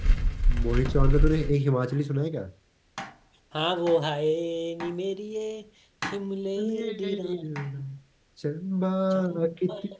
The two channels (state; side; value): identical; both; correlation 1.00